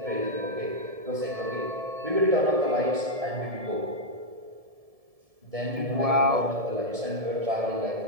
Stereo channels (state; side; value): late; left; 1.7 ms